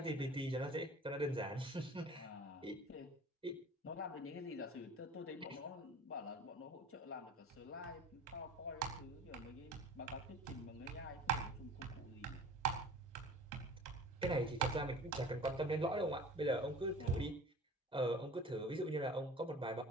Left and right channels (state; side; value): normal; both; correlation 0.43